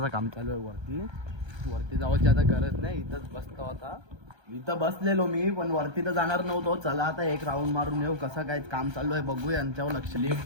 काम चालू आहे वरती. वरती जावायची आता गरज नाही. इथंच बसतो आता. इथं बसलेलो मी पण वरती तर जाणार नव्हतो. चला आता 1 राऊंड मारून येऊ. कसं काय काम चालू आहे बघू. यांच्यावर लक्ष.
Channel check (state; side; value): late; left; 1.3 ms